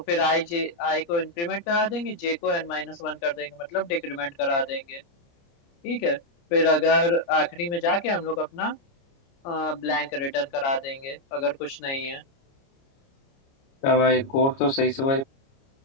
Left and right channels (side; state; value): right; late; 29 ms